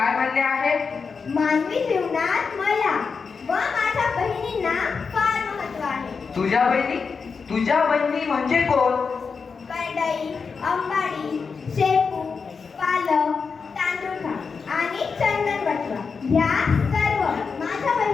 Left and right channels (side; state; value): right; quieter; 5.3 dB